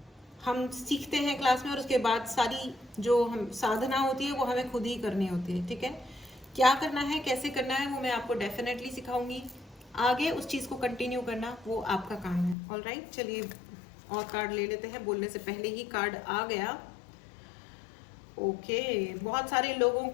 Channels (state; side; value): drops out; right; at 12.6 s